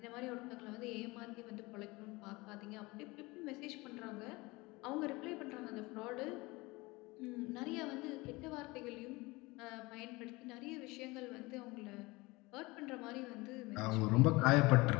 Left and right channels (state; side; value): quieter; right; 23.0 dB